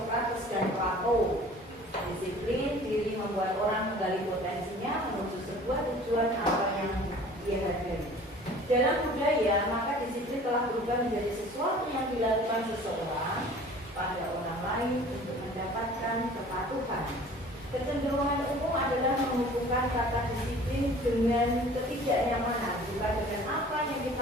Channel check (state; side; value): normal; both; correlation 0.47